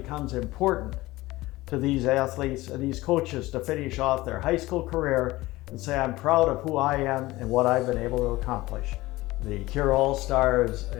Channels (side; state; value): right; quieter; 19.0 dB